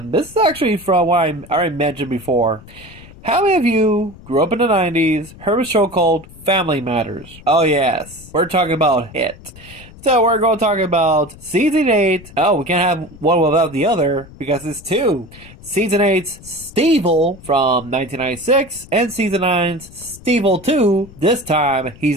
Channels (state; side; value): noise; left; rumble, 20 dB below the sound